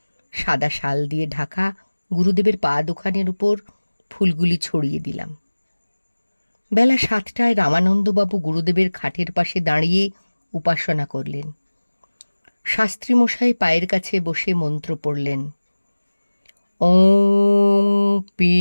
সাদা শাল দিয়ে ঢাকা গুরুদেবের পা দুখানের উপর ফুলগুলি ছড়িয়ে দিলাম। বেলা 7টায় রামানন্দবাবু গুরুদেবের খাটের পাশে দাঁড়িয়ে উপাসনা করলেন। শাস্ত্রীমশাই পায়ের কাছে বসে মন্ত্র পড়লেন। ওং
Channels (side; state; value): both; inverted; correlation -1.00